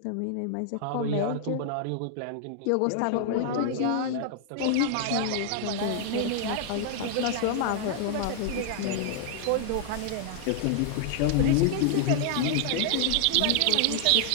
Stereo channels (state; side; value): different; both; correlation 0.00